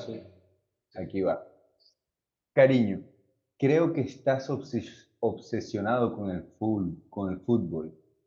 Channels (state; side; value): identical; both; correlation 1.00